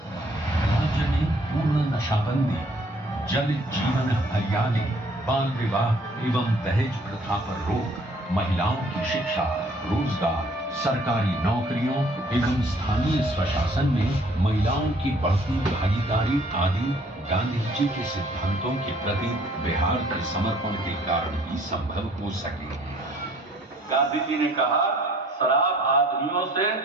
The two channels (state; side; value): normal; both; correlation 0.59